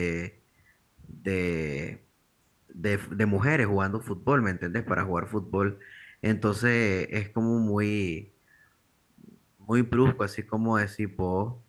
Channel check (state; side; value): identical; both; correlation 1.00